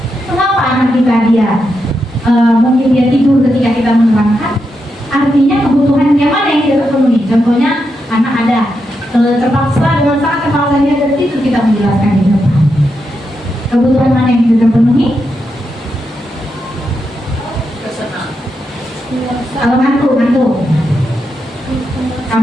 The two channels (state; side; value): normal; both; correlation 0.85